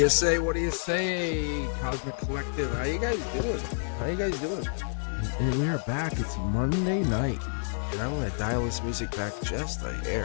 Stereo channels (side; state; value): right; silent; digital silence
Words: say? What do you say, Cosmic Collective? How you guys doing? How you guys doing? And we are back. It's Monday night, and I'm gonna dial this music back just a